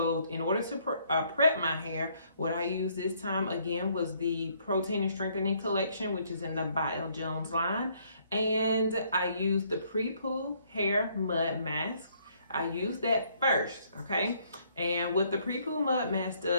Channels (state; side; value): inverted; both; correlation -0.67